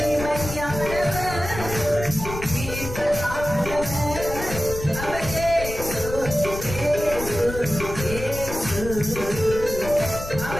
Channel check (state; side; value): noise; left; rumble, 9 dB below the sound